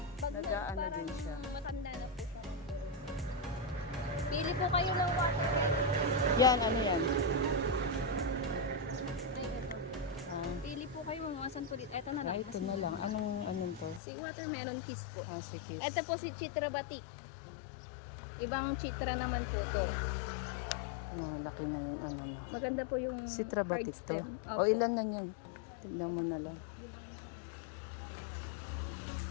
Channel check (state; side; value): drops out; right; at 14.0 s